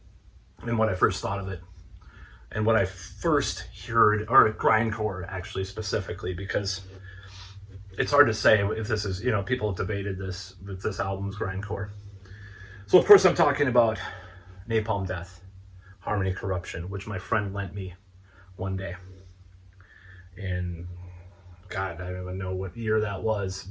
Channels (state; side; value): identical; both; correlation 1.00